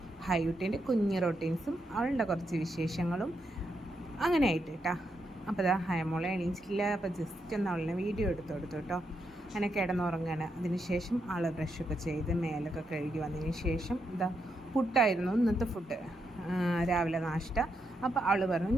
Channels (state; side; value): normal; both; correlation 0.81